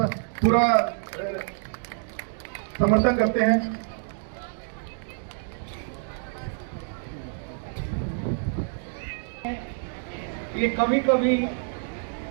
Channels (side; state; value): left; silent; digital silence